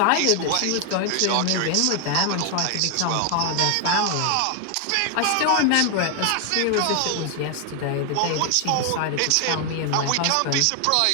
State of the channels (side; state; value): both; different; correlation 0.00